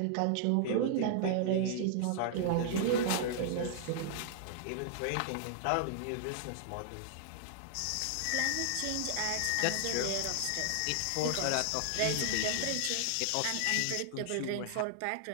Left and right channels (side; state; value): both; different; correlation -0.01